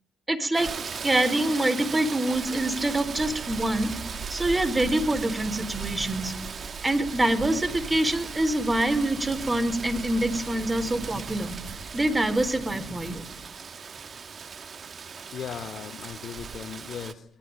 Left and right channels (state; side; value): normal; both; correlation 0.91